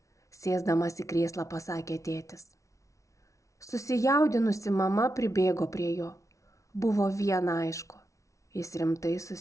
sėsdamas į krėslą pasakė tėtis. Susijaudinusi mama pribėgo prie jo. Buvo viena aišku, jis rimtai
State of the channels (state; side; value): late; right; 0.15 ms